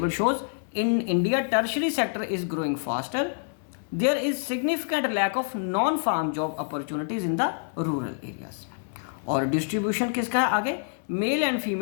shows in India tertiary sector is growing faster there is significant lack of non farm job opportunities in the rural areas. और डिस्ट्रीब्यूशन किसका है आगे, male and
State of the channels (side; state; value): right; silent; 60 dB below the other